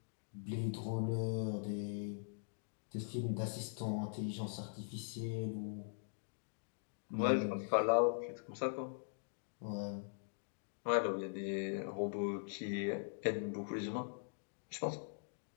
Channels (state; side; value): silent; right; digital silence